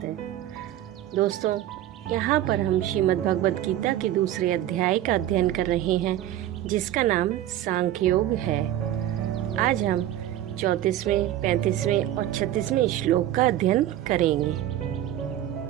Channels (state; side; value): quieter; left; 12.8 dB